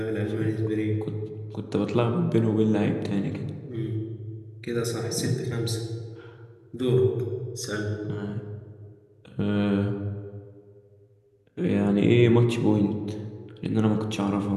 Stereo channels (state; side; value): identical; both; correlation 1.00